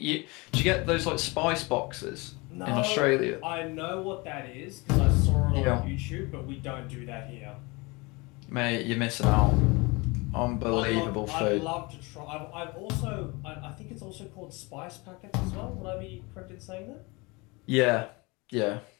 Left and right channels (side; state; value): right; quieter; 26.1 dB